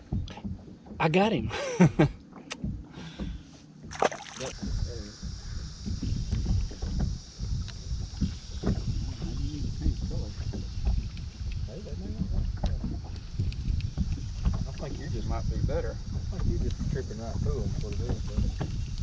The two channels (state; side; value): identical; both; correlation 1.00